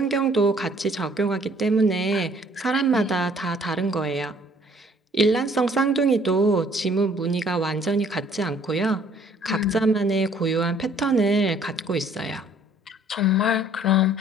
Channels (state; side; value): normal; both; correlation 0.59